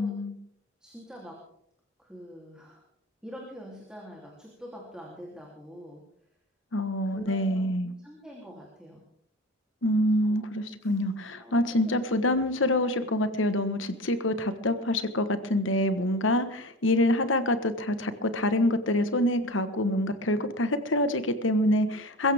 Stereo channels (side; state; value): both; normal; correlation 0.33